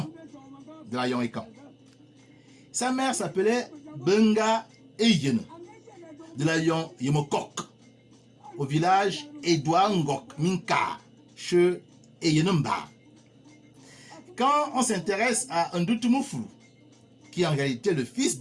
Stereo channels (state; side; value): identical; both; correlation 1.00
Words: de Layon Ekan. Sa mère s'appelait Benga Eyene, de Layon Yemokok, au village Edouard Ngok Minka, chez Eyenemba. Quand on s'intéresse à Ndutumufulu, qui est en réalité le fils